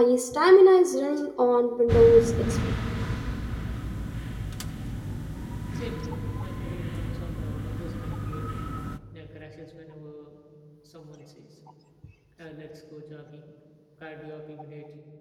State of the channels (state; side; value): identical; both; correlation 1.00